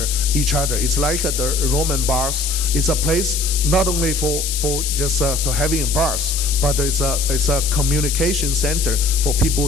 each other. It's like the Roman bars. It's a place not only for just to having bars, but it's a communication center for people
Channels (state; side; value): noise; left; hiss, 3 dB below the sound